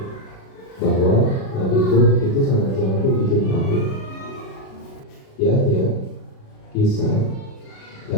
bahwa Nabi Nuh itu sangat jago bikin perahu. Ya, kisah.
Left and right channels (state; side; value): late; right; 37 ms